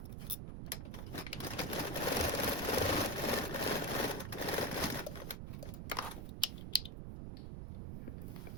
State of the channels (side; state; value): right; noise; rumble, 6 dB below the sound